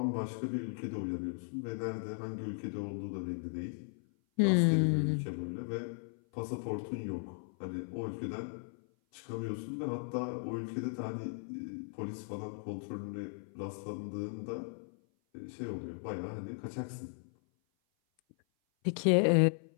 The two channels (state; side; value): silent; right; 53 dB below the other